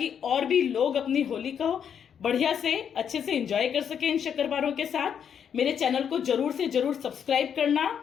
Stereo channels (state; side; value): quieter; right; 8.1 dB